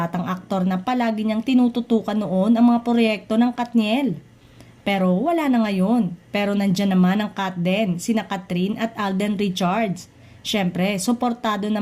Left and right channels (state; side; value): identical; both; correlation 1.00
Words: aktor na palagi niyang tinututukan noon ang mga proyekto ng Katniel. Pero wala na ngayon. Pero nandyan naman ang Kat din, sina Catherine at Alden Richards. Siyempre, suportado